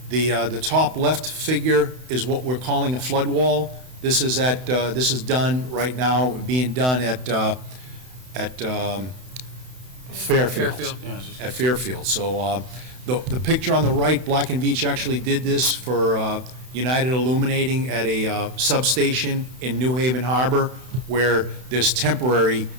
The top left figure is what we're calling a flood wall. This is done right now, being done at Fairfield. At Fairfield. So the picture on the right, Black and Veatch actually did this for United Illuminating at a substation in New Haven Harbor, where there's temporary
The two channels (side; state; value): left; late; 31 ms